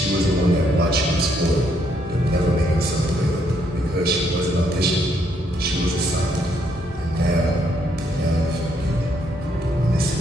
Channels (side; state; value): both; normal; correlation 0.72